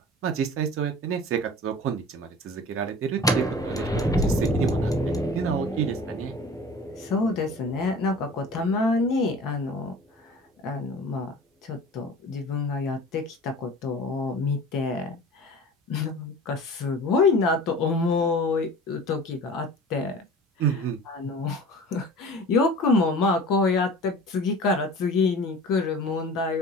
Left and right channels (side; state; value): both; normal; correlation 0.41